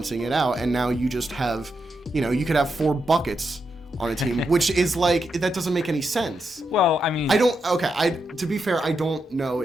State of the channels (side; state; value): both; normal; correlation 0.84